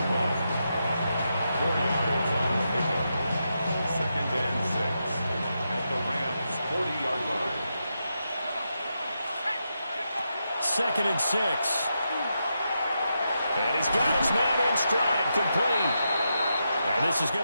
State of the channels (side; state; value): both; inverted; correlation -0.85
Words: 4 yards on the pickup. 2nd and 6 at the Rams' 40-yard line. 2nd and 6. And he's got his man in stride, complete. And this is